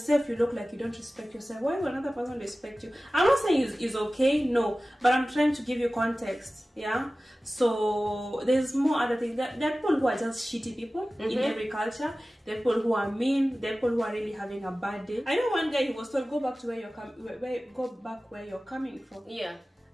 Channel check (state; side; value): normal; both; correlation 0.96